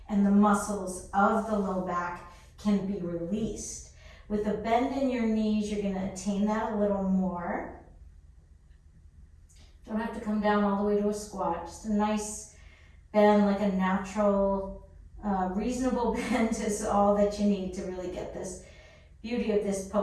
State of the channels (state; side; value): identical; both; correlation 1.00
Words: and the muscles of the low back can be released. With a bend in your knees, you're going to attain that a little more. Don't have to come down all the way to a squat. Just a nice bend, like a natural, reasonable bend is all that you need to really get this beauty of this